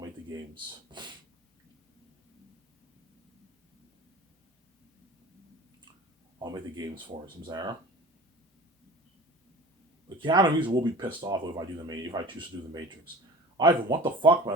the games. I'll make the games for it, Zara. But Keanu Reeves will be pissed off if I choose to do the Matrix. Ivan, what the fuck,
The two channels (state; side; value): normal; both; correlation 0.40